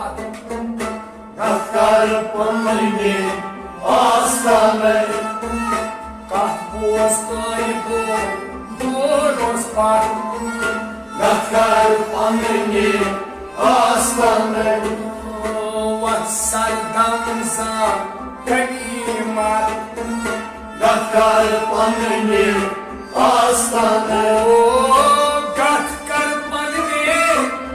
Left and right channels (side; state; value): both; identical; correlation 1.00